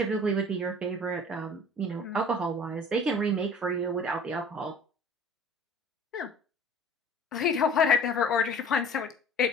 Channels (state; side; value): normal; both; correlation 0.46